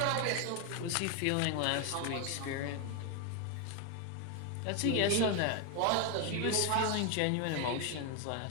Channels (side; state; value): both; different; correlation 0.01